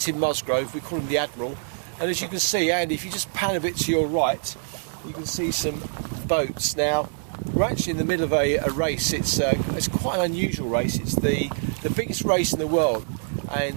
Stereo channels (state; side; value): silent; left; 62 dB below the other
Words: Musgrove. We call him the Admiral. And as you can see, Andy, if you just pan a bit to your right, you can see some boats. Now, we're actually in the middle of a race. It's quite an unusual race. It's the biggest race in the world.